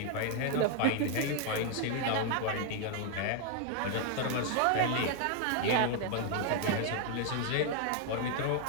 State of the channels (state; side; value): different; both; correlation 0.00